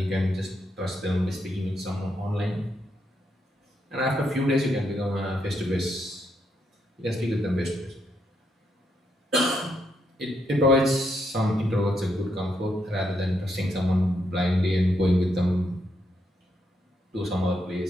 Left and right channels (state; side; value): normal; both; correlation 0.79